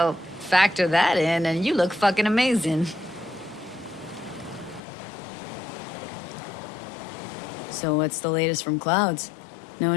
factor that in and you look fucking amazing. So what's the latest from Clouds? Know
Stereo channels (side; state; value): right; drops out; at 4.8 s